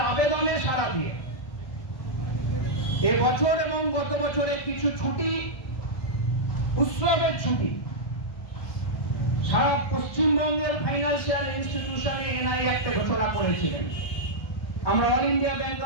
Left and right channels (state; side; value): late; right; 1.2 ms